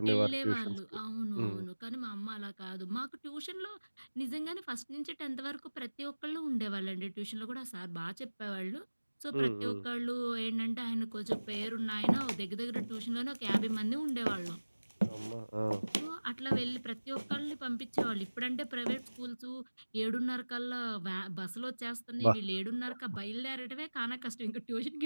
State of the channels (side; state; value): both; inverted; correlation -1.00